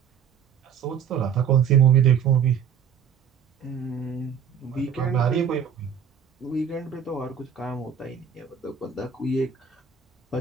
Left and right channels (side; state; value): left; quieter; 7.5 dB